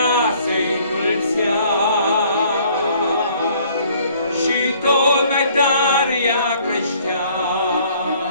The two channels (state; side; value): inverted; both; correlation -0.59